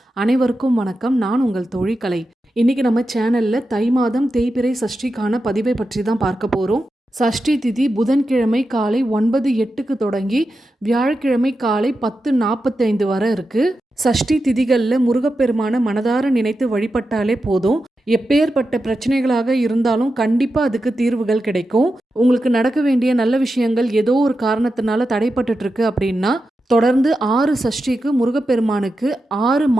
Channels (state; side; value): normal; both; correlation 0.90